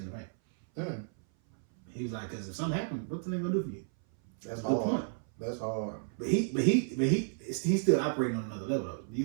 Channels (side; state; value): left; silent; 56 dB below the other